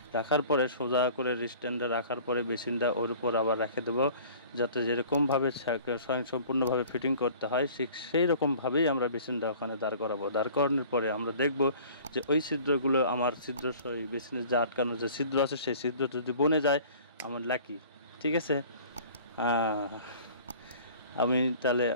রাখার পরে সোজা করে স্ট্যান্ডটা রাখার পরে বেসিনটা ওর উপর আবার রেখে দেবো, যাতে যেরকমভাবে সম্পূর্ণভাবে ফিটিং করতে হয় ঠিক সেই রকমভাবেই আমরা বেসিনটা ওখানে দাঁড় করাবো। দাঁড় করানোর পরে আমরা দেখব যে ওই ছিদ্রগুলো আমার ওই বেসিনের যে আটকানো যে ছিদ্র আছে সেই ছিদ্র যদি বনে যায় আমার লাকি। ঠিক আছে, আমি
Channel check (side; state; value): both; inverted; correlation -0.47